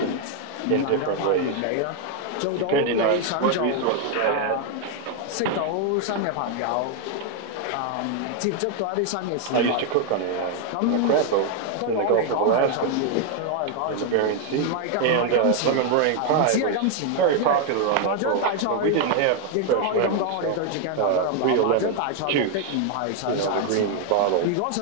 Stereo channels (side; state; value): both; different; correlation 0.00